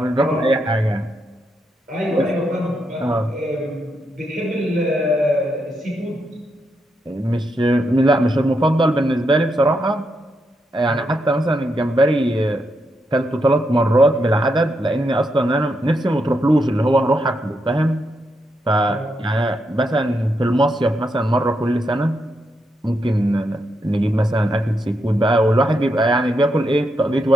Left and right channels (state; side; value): normal; both; correlation 0.82